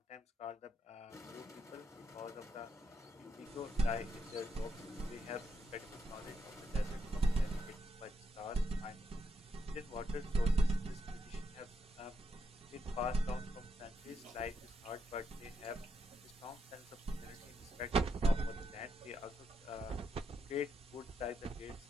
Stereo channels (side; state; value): both; normal; correlation 0.80